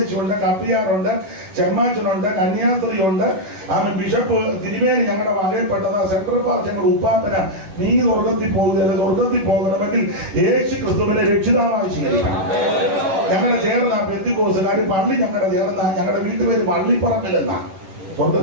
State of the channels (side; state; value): left; late; 11 ms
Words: കപ്പിയാറുണ്ട്, ചെമ്മാച്ചനുണ്ട്, കന്യാസ്ത്രീയുണ്ട്, ബിഷപ്പ് തിരുമേനി ഞങ്ങളുടെ വകയിൽപ്പെട്ടത്, സെൻട്രൽ പാർട്ടി ഞങ്ങളുടെ ഉപ്പാപ്പന. നീ സ്വർഗത്തിൽ പോകുകയല്ല. സ്വർഗത്തിൽ പോകണമെങ്കിൽ യേശു ക്രിസ്തുവിനെ രക്ഷിതാവായി സ്വീകരിക്കണം. ഞങ്ങളുടെ ചേർന്ന പെന്തിക്കോസുകാർ പള്ളി ഞങ്ങളുടെ ചേർന്ന ഞങ്ങളുടെ വീട്ടുപേര് പള്ളിപ്പറമ്പിലെന്നാ.